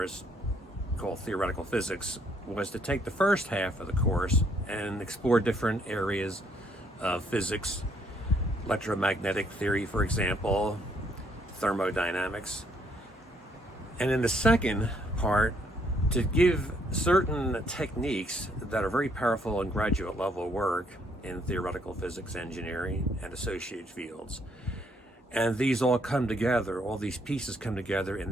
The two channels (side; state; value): both; normal; correlation 0.69